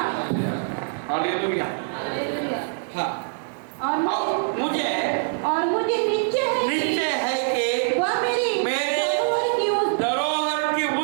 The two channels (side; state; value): left; silent; digital silence